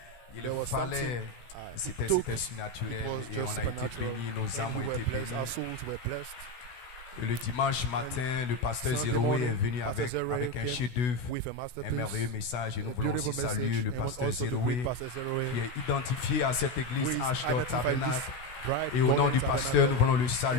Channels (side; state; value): right; late; 16 ms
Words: il fallait, c'était surnaturel et on a été bénis, nos âmes ont été Our bénies. souls were blessed. Et le dimanche matin, le pasteur Zéroé est venu avec un chef-d'œuvre, With a masterpiece. un merveilleux message et nous voulons aussi saluer le pasteur Zéroé qui est identifié à cette église Ashdod Tabernacle. Et au nom du pasteur, nous voulons le